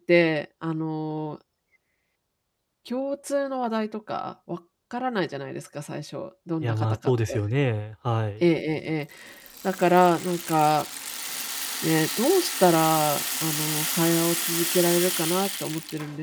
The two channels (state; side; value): identical; both; correlation 1.00